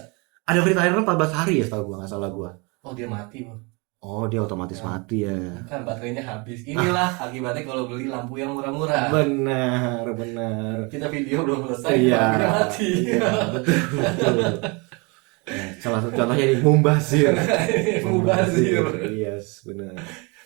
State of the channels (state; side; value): quieter; left; 29.4 dB